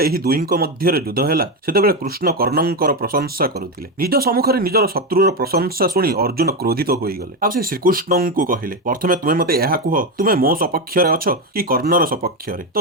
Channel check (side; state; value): both; normal; correlation 0.12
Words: ଏହି ଦୁହିଁଙ୍କ ମଧ୍ୟରେ ଯୁଦ୍ଧ ହେଲା, ସେତେବେଳେ କୃଷ୍ଣ କର୍ଣ୍ଣଙ୍କର ପ୍ରଶଂସା କରୁଥିଲେ। ନିଜ ସମ୍ମୁଖରେ ନିଜର ଶତ୍ରୁର ପ୍ରଶଂସା ଶୁଣି ଅର୍ଜୁନ କ୍ରୋଧିତ ହୋଇଗଲେ। ଆଉ ସେ ଶ୍ରୀକୃଷ୍ଣଙ୍କୁ କହିଲେ, ପ୍ରଥମେ ତୁମେ ମୋତେ ଏହା କୁହ, ତୁମେ ମୋ ସପକ୍ଷରେ ଅଛ କି କର୍ଣ୍ଣର ସପକ୍ଷରେ? ତ